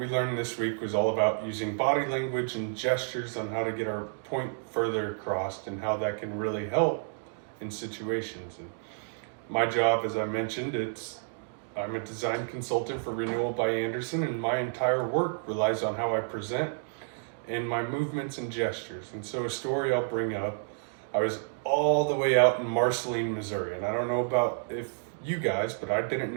learned this week was all about using body language and gestures on how to get our point further across and how that can really help in situations. And my job, as I mentioned, I'm a design consultant for Renewal by Anderson, and my entire work relies on how I present and my movements and gestures. And so, a story I'll bring up, I was all the way out in Marceline, Missouri, and I don't know about if you guys, but I didn't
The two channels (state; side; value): silent; left; digital silence